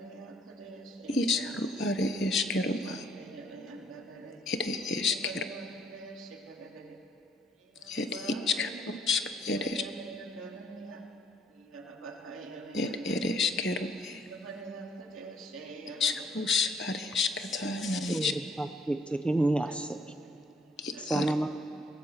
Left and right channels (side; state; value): both; normal; correlation 0.65